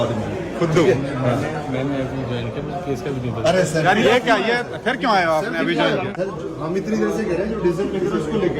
है खुद मैंने अभी ज्वाइन किया, मुझे केस का भी नहीं पता। अरे सर यार ये क्या, ये फिर क्यों आए हो आपने अभी ज्वाइन किया? सर, हम इतनी देर से कह रहे हैं जो डीजल पे करो उसको लेके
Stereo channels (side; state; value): both; identical; correlation 1.00